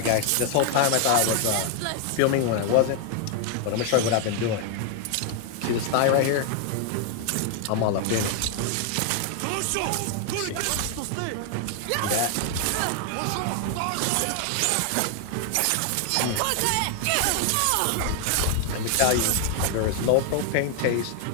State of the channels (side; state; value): both; different; correlation 0.00